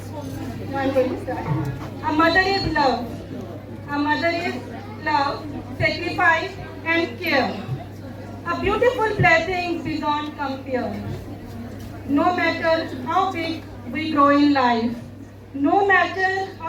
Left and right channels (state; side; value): identical; both; correlation 1.00